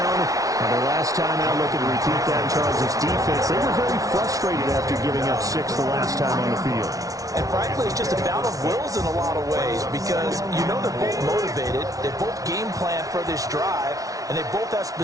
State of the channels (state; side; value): late; left; 0.17 ms